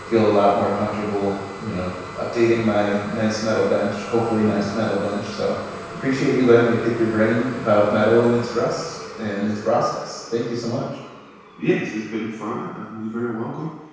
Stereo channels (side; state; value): both; identical; correlation 1.00